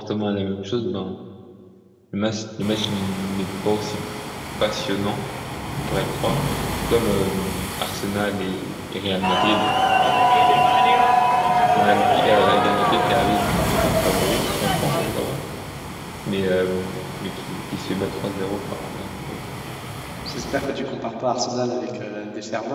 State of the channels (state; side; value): identical; both; correlation 1.00